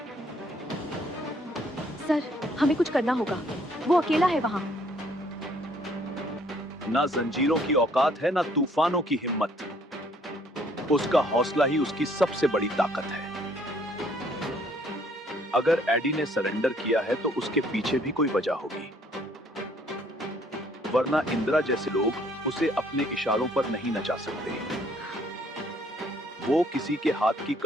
सर, हमें कुछ करना होगा। वो अकेला है वहाँ। ना जंजीरों की औकात है, ना तूफानों की हिम्मत। उसका हौसला ही उसकी सबसे बड़ी ताकत है। अगर एडी ने सरेंडर किया है तो उसके पीछे भी कोई वजह होगी, वरना इंदिरा जैसे लोग उसे अपने इशारों पर नहीं नचा सकते। वो किसी के हाथ की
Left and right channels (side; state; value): both; normal; correlation 0.63